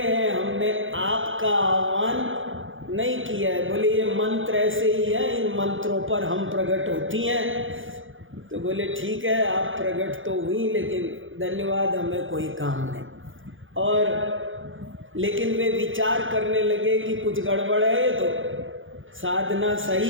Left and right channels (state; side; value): late; left; 0.58 ms